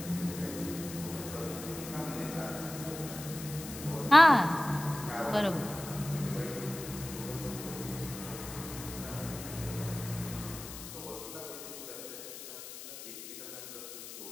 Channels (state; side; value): noise; left; hiss, 11 dB below the sound